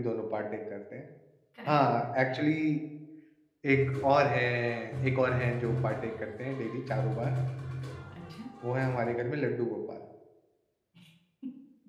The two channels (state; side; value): identical; both; correlation 1.00